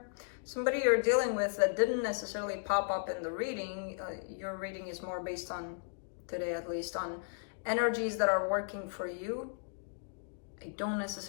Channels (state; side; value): silent; right; digital silence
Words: Somebody you're dealing with that didn't necessarily pop up in the reading. Your reading is more based on, today at least, on energies that are working for you. I don't